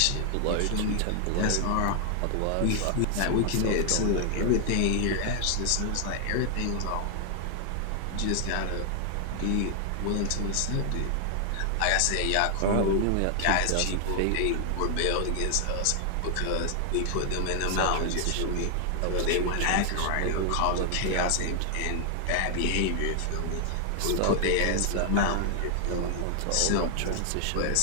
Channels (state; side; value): different; both; correlation 0.00